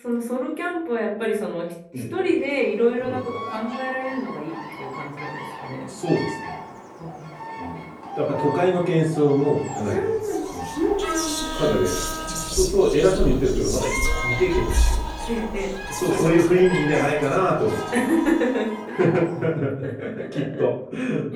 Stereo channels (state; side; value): identical; both; correlation 1.00